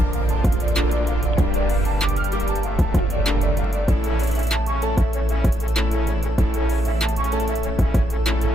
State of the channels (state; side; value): normal; both; correlation 0.78